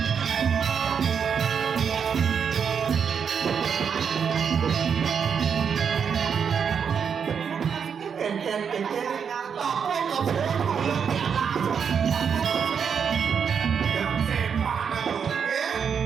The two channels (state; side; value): quieter; left; 6.9 dB